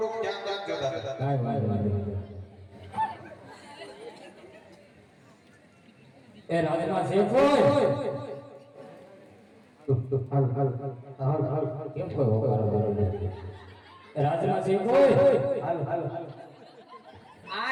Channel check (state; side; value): identical; both; correlation 1.00